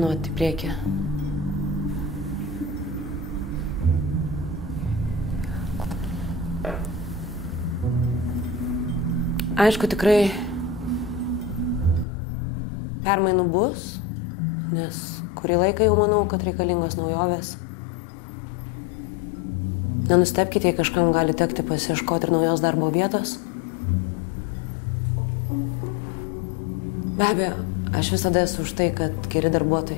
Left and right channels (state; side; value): drops out; right; at 12.1 s